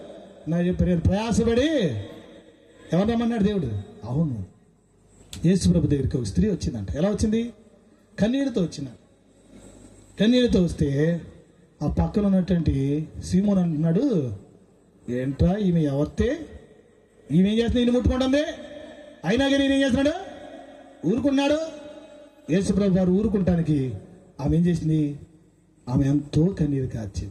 నా చెప్పారు ప్రయాసపడి ఎవరు రమ్మన్నాడు దేవుడు? అవును, యేసు ప్రభు దగ్గరికి ఒక స్త్రీ వచ్చిందంట. ఎలా వచ్చింది? కన్నీళ్ళతో వచ్చిందంట. కన్నీళ్ళతో వస్తే ఆ పక్కన ఉన్నటువంటి సీమోన్ అంటున్నాడు, ఏంట్రా ఈమె ఎవరితే? ఈమె ఏం చేస్తుంది? ఈయన ముట్టుకుంటుంది. అయినా కానీ ఈయన ఏం చేస్తున్నాడు? ఊరుకున్నాడు. యేసు ప్రభు వారు ఊరుకుంటానికి ఆమె ఏం చేసింది? ఆమె ఎంతో కన్నీరు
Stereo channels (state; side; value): identical; both; correlation 1.00